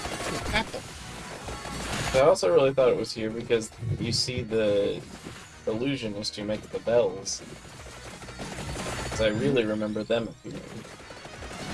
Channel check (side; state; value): both; identical; correlation 1.00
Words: Apple. I also really thought it was here because you see the illusionist who makes the bells. 'Cause I really remember them appearing.